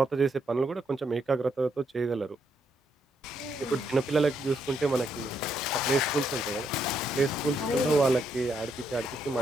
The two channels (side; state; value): both; normal; correlation 0.76